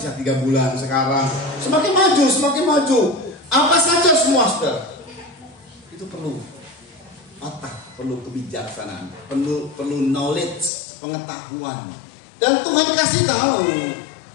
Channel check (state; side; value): drops out; right; at 10.7 s